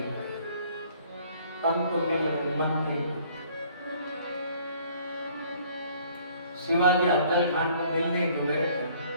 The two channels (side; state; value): both; inverted; correlation -0.57